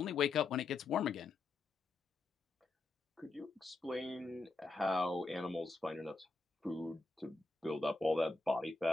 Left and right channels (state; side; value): quieter; right; 3.5 dB